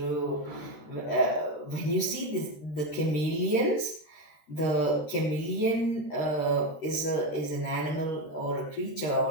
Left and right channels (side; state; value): right; late; 13 ms